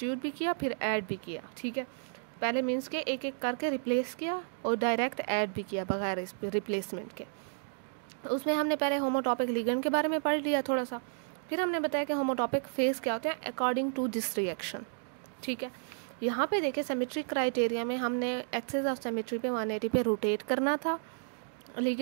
भी किया फिर ऐड भी किया। ठीक है। पहले मीन्स के एक एक करके रिप्लेस किया और डायरेक्ट ऐड भी किया बगैर इस रिप्लेसमेंट के। उसमें हमने पहले होमोटॉपिक लिगेंड के बारे में पढ़ लिया थोड़ा सा, फिर हमने बताया कि होमोटॉपिक फेज क्या होते हैं अकॉर्डिंग टू दिस रिएक्शन। ठीक है। यहाँ पे देखें सिमेट्री क्राइटेरिया में हमने एक्सिस ऑफ सिमेट्री पे 180 पे रोटेट करना था,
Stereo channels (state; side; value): silent; left; digital silence